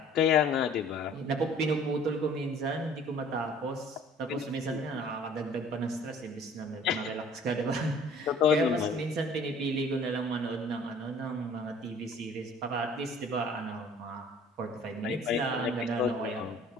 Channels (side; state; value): both; normal; correlation 0.51